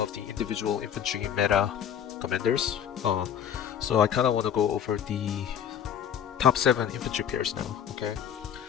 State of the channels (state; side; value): quieter; right; 9.1 dB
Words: the individual infantry meta commanders. So I kind of want to go over the top 7 infantry pairs now. Okay.